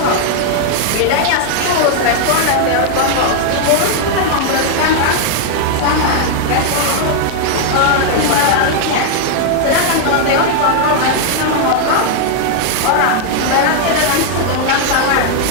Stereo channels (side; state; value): both; different; correlation 0.00